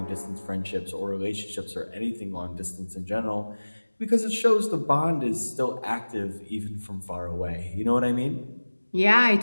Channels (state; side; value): inverted; both; correlation -1.00